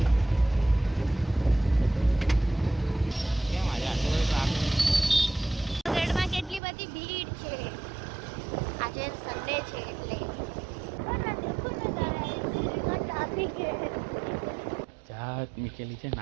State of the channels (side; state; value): left; drops out; at 6.6 s